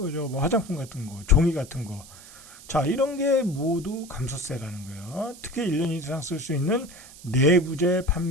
뭐 화장품 같은 거, 종이 같은 거. 자, 이런 게 모두 감소세라는 거예요. 특히 1년 이상 쓸 수 있는 내구재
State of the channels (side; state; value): right; noise; hiss, 19 dB below the sound